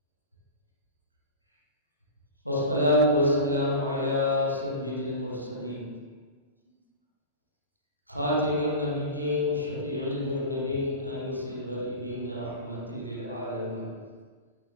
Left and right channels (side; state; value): both; inverted; correlation -0.31